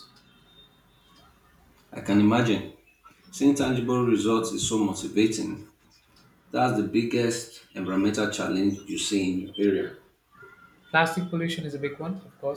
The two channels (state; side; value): identical; both; correlation 1.00